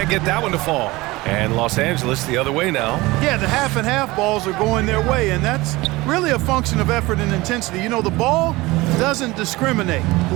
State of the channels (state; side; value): quieter; left; 20.9 dB